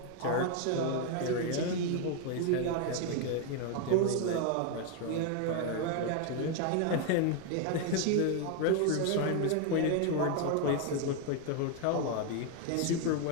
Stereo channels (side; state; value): both; different; correlation 0.01